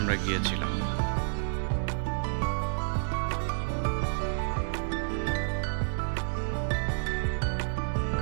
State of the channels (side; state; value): left; silent; digital silence